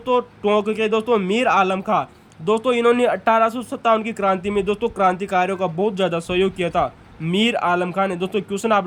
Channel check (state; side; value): identical; both; correlation 1.00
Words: टोंक के दोस्तों मीर आलम खां दोस्तों। इन्होंने 1857 की क्रांति में दोस्तों क्रांतिकारियों का बहुत ज़्यादा सहयोग किया था मीर आलम खां ने दोस्तों। क्वेश्चन आप